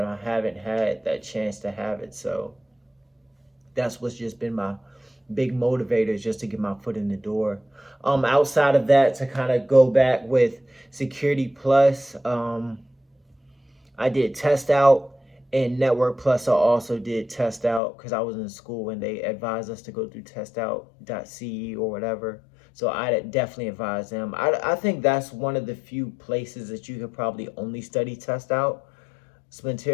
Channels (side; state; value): right; drops out; at 17.8 s